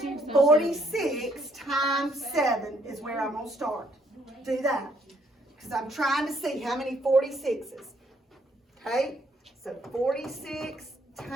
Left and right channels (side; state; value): both; normal; correlation 0.69